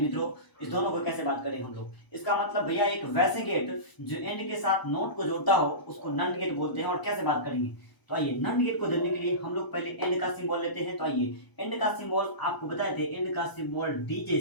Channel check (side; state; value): right; late; 1.0 ms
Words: मित्रों इस दोनों को कैसे बात करें हम लोग। इसका मतलब भैया एक वैसे गेट जो एंड के साथ नोट को जोड़ता हो उसको नंड गेट बोलते हैं। और कैसे बात करेंगे, तो आइए नंड गेट को देने के लिए हम लोग पहले एंड का सिंबल लेते हैं। तो आइए एंड का सिंबल आपको बताए थे, एंड का सिंबल डी